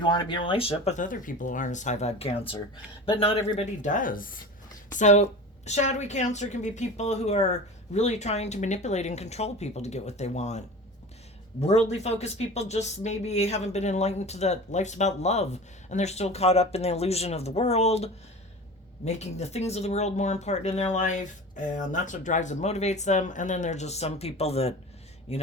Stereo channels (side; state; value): both; normal; correlation 0.35